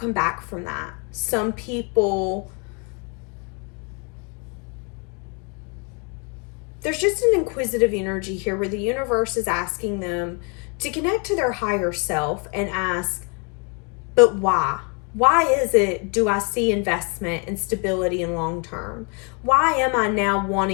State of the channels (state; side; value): quieter; right; 35.1 dB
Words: back from that. Some people, there's just an inquisitive energy here where the universe is asking them to connect to their higher self and ask, but why? Why is it do I see investment and stability in long term? Why am I now